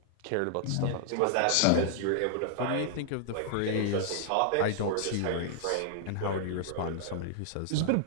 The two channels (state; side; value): different; both; correlation 0.00